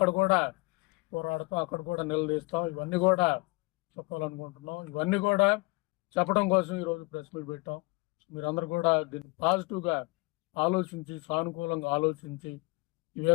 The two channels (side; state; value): right; quieter; 26.7 dB